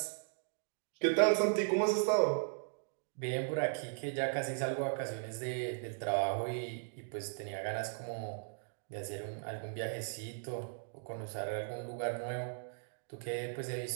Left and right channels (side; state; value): left; silent; digital silence